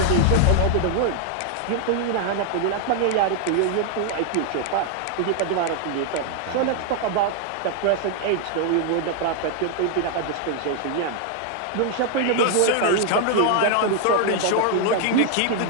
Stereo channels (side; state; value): both; different; correlation 0.00